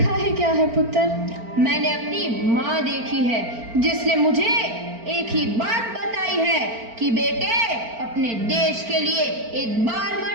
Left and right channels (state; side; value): late; left; 4.4 ms